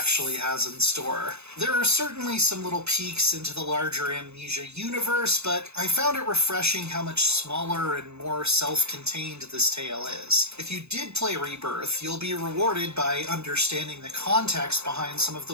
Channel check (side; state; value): left; late; 0.80 ms